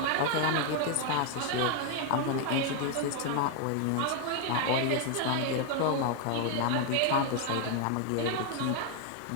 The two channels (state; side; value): different; both; correlation 0.01